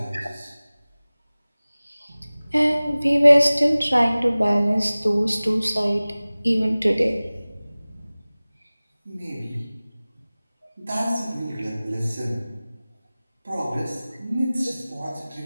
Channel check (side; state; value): both; inverted; correlation -0.99